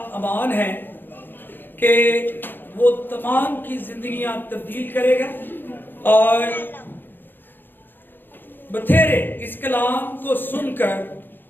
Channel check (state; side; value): late; right; 0.094 ms